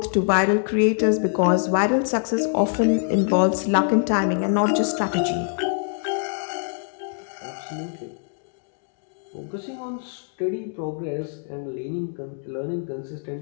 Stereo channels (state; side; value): silent; right; 62 dB below the other